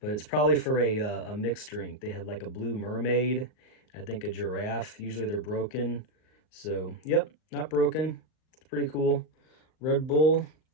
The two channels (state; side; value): late; right; 39 ms